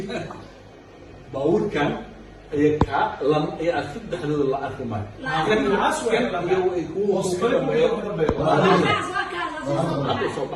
bawrkan ay ka lam ay afid dhaxdooda la arki maayo kan aswaa ay ku hoosqayn hadda soo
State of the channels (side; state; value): both; identical; correlation 1.00